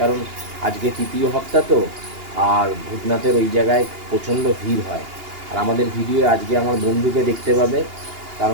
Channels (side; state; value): left; late; 2.8 ms